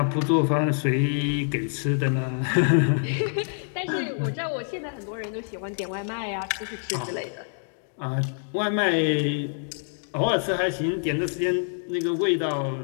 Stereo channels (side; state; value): right; silent; digital silence